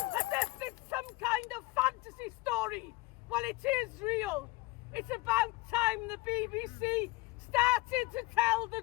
As if it's some kind of fantasy story. Well, it is real. It's about time the BBC started to tell the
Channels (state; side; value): quieter; right; 21.6 dB